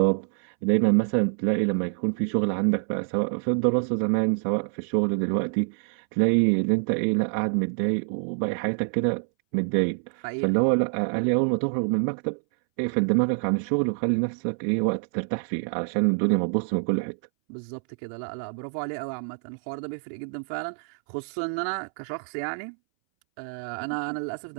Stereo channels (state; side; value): silent; left; 61 dB below the other